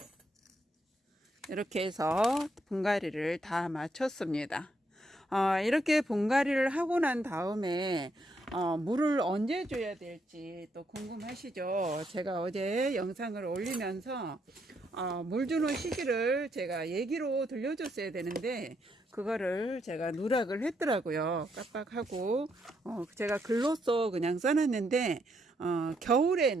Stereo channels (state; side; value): normal; both; correlation 0.76